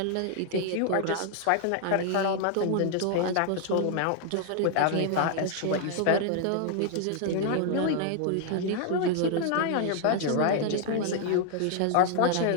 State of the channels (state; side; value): different; both; correlation 0.00